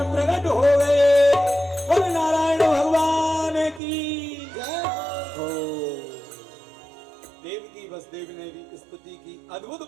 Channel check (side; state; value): left; drops out; at 3.8 s